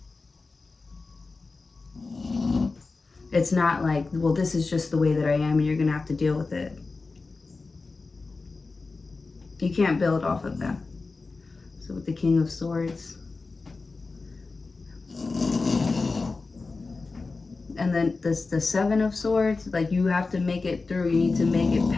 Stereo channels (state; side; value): quieter; right; 3.9 dB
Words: It's not like, well, this is just the way that I am and you're gonna have to deal with it. You can't build off of that. So with the King of Swords, and then this, the Seven of Swords, like, you have to make it through. You need to make it